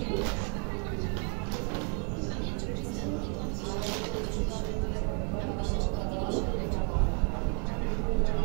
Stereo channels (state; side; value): quieter; left; 39.1 dB